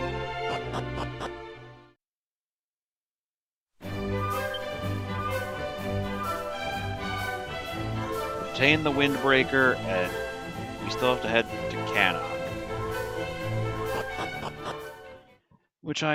Obtain the Windbreaker, and we still have to head to Cannock, which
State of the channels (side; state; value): both; identical; correlation 1.00